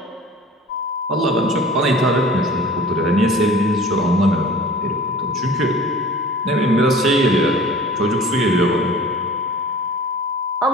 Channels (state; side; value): normal; both; correlation 0.44